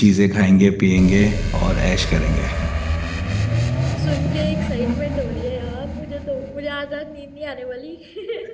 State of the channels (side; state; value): both; identical; correlation 1.00